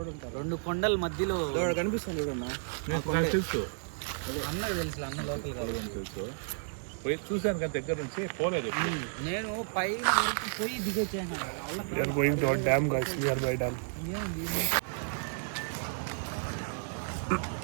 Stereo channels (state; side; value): silent; left; digital silence